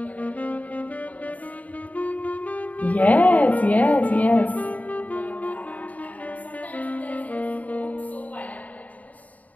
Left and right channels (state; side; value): late; right; 0.072 ms